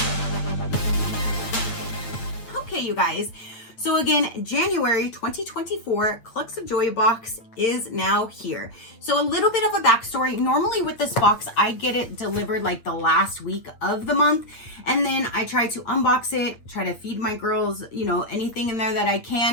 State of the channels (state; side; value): late; right; 8.8 ms